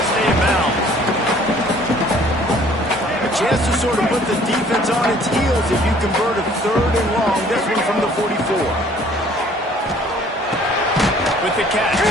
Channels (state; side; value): normal; both; correlation 0.56